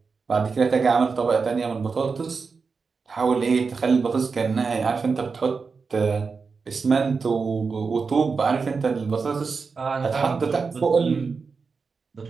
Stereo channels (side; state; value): left; quieter; 4.9 dB